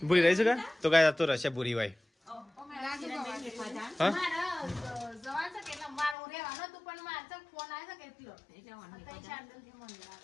ભૂરી રહી છે તો કાંઈ તો રહેશે ભૂરી ભાઈ હા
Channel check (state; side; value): drops out; right; at 6.2 s